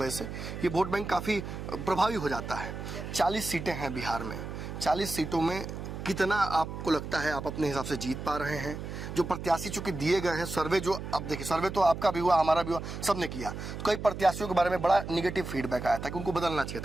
से ये वोट बैंक काफ़ी प्रभावी हो जाता है। 40 सीटें हैं बिहार में, 40 सीटों में कितना आपको लगता है आप अपने हिसाब से जीत पा रहे हैं? जो प्रत्याशी चूंकि दिए गए हैं, सर्वे जो अब देखिए, सर्वे तो आपका भी हुआ, हमारा भी हुआ, सबने किया, तो कई प्रत्याशियों के बारे में बड़ा निगेटिव फीडबैक आया था कि उनको बदलना चाहिए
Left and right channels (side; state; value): right; noise; hum, 8 dB below the sound